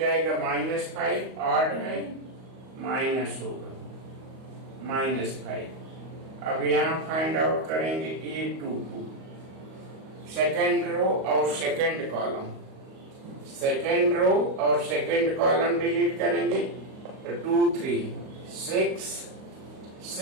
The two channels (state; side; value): late; left; 38 ms